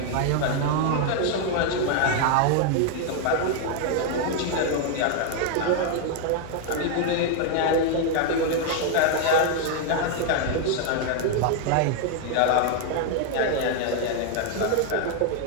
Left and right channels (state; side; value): different; both; correlation 0.00